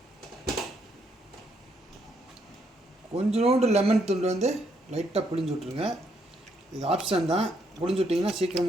கொஞ்சோண்டு லெமன் துண்டு வந்து லைட்டாக புளிஞ்சு விட்ருங்க. இது ஆப்ஷன் தான். புளிஞ்சு விட்டிங்கன்னா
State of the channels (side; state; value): both; normal; correlation 0.74